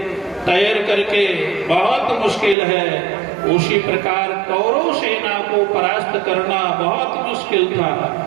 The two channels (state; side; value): drops out; left; at 2.6 s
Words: तैर करके बहुत मुश्किल है, उसी प्रकार कौरव सेना को परास्त करना बहुत मुश्किल था।